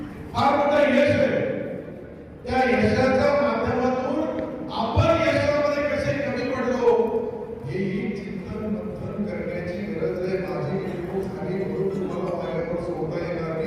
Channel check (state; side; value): identical; both; correlation 1.00